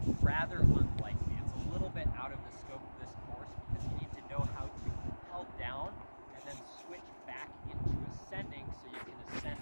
rather unlikely. It's a little bit out of the scope of this course because you need to know how to rappel down and then switch back into ascending so you can ascend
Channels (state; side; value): inverted; both; correlation -1.00